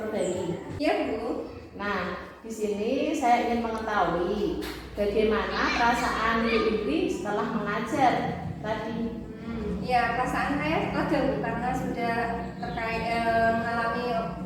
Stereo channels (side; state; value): both; identical; correlation 1.00